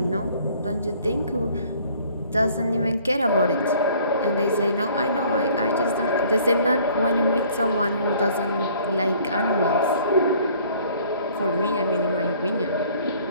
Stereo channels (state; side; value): inverted; both; correlation -0.56